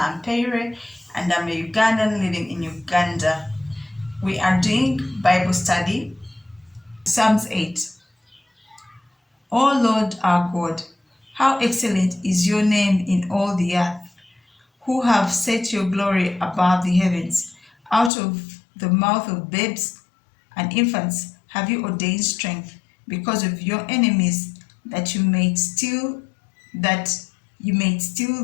and I'm a Ugandan living in Uganda. We are doing Bible study, Psalms 8. O Lord our God, how excellent is your name in all the earth, who have set your glory above the heavens. Out of the mouth of babes and infants have you ordained strength because of your enemies, that you may steal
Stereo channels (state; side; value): drops out; right; at 18.1 s